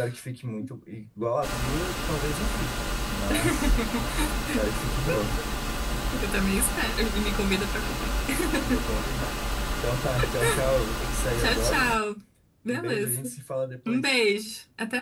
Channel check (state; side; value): identical; both; correlation 1.00